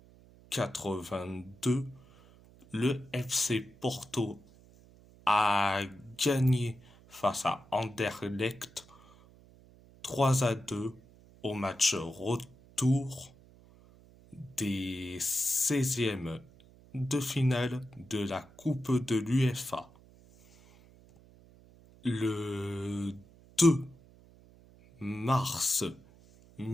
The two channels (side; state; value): right; noise; hum, 25 dB below the sound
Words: le FC Porto a gagné face à Anderlecht 3-2 au match retour des 16e de finale de la Coupe de l'UEFA. Le 2 mars